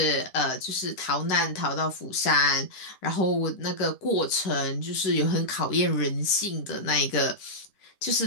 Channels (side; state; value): right; late; 10 ms